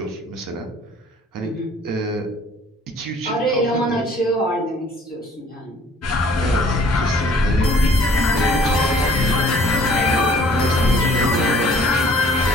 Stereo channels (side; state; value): both; normal; correlation 0.55